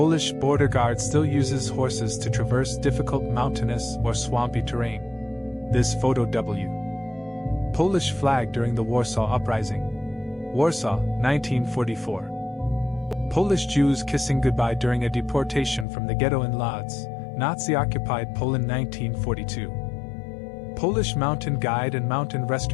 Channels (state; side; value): drops out; right; at 15.9 s